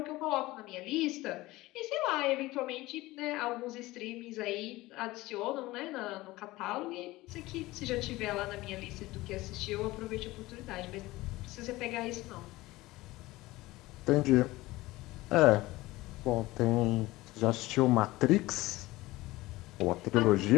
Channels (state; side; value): quieter; right; 19.1 dB